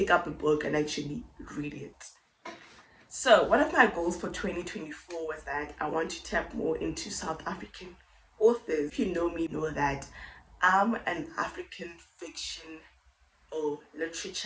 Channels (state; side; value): identical; both; correlation 1.00